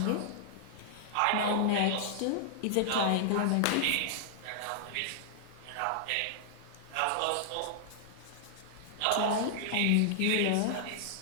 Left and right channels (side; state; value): both; different; correlation -0.01